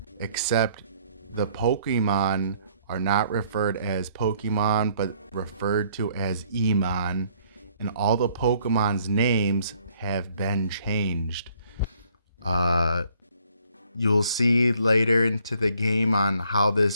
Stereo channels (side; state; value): both; inverted; correlation -0.63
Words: except the Pokemon are not referred as Pokemon but referred to as E-mon, and all the Pokemon's names have been changed. You'll see later into the game on how